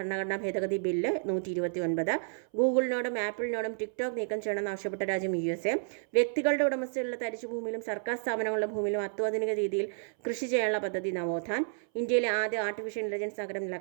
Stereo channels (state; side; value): silent; left; 57 dB below the other